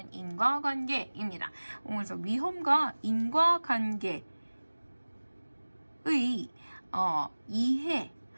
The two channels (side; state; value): both; inverted; correlation -1.00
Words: 인과관계입니다. 그래서 위험과 인과관계의